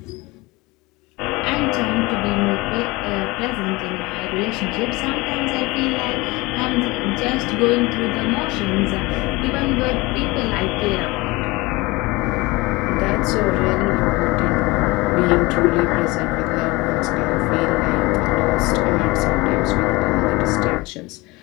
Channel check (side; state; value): right; quieter; 23.0 dB